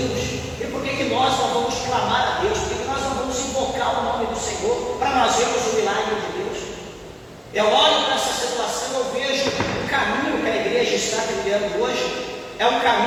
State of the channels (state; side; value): identical; both; correlation 1.00